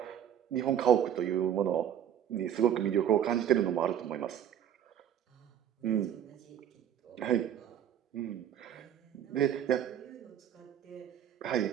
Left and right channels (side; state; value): left; quieter; 9.8 dB